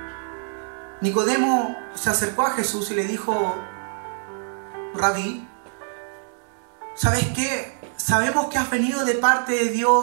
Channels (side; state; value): left; silent; 59 dB below the other